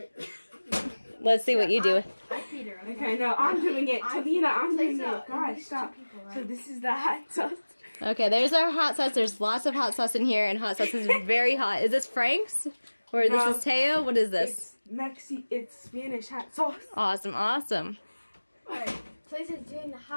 Let's see what you do. Okay, no, I'm doing it. Talina, I'm doing it. Gosh, stop. So this is the hot sauce. Okay, there's our hot sauce. There's lots of hot sauce in here, and hot sauce is very hot. Is this Frank's? Or this is Teo? What is this? It's Spanish hot sauce. Awesome, awesome. Alright, Talisa's doing the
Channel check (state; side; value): inverted; both; correlation -1.00